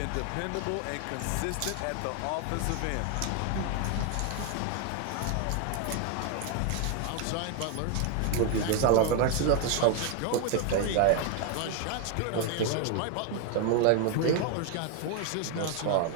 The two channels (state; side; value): different; both; correlation 0.01